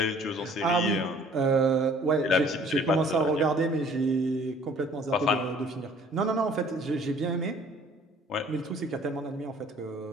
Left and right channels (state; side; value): normal; both; correlation 0.54